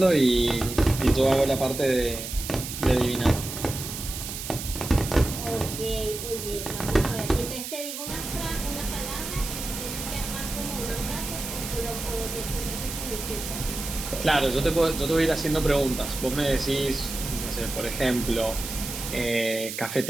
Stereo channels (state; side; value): noise; right; hiss, 7 dB below the sound